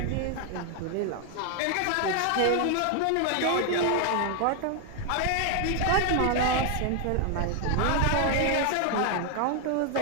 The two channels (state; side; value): different; both; correlation 0.00